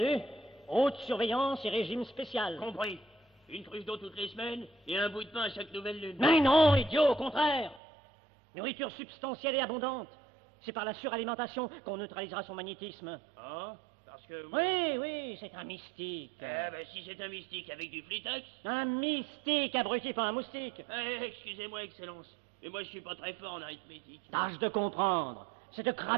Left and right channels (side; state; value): left; drops out; at 7.8 s